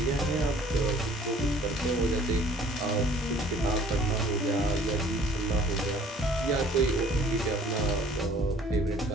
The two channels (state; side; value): normal; both; correlation 0.54